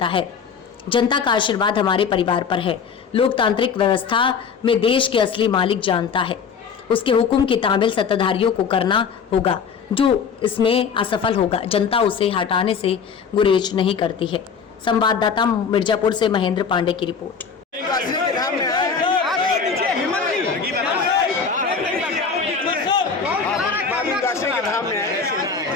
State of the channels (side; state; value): right; quieter; 6.1 dB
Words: है। जनता का आशीर्वाद हमारे परिवार पर है। लोकतांत्रिक व्यवस्था में देश के असली मालिक जानता है। उसके हुक्म की तामील सत्ताधारियों को करना होगा। जो इसमें असफल होगा, जनता उसे हटाने से गुरेज नहीं करती है। संवाददाता मिर्जापुर से महेंद्र पांडे की रिपोर्ट।